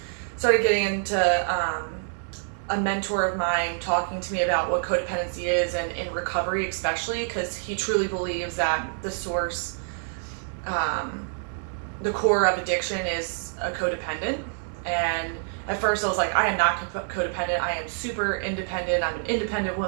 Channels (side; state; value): left; silent; digital silence